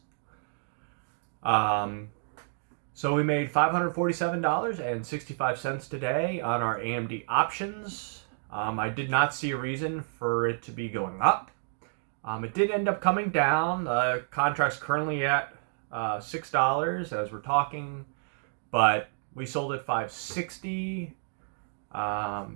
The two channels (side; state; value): left; silent; digital silence